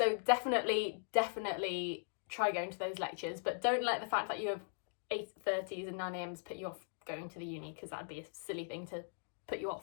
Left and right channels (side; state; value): right; silent; digital silence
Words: definitely try going to those lectures, but don't let the fact that you have 8:30s and 9 a.m.s put you off going to the uni, because that'd be a silly thing to put you